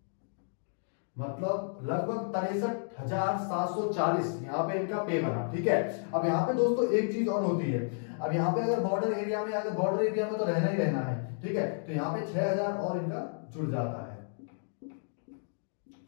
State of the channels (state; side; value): silent; right; digital silence